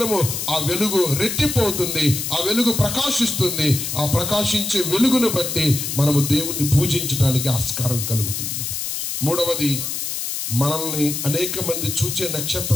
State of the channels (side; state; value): left; noise; hiss, 4 dB below the sound